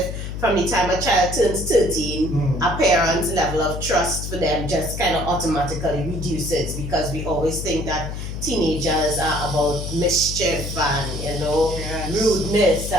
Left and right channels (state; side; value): noise; left; hum, 6 dB below the sound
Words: from the time a child turns 13, a parent's level of trust for them just kind of automatically reduces, because we always think that teenagers are about mischief and rudeness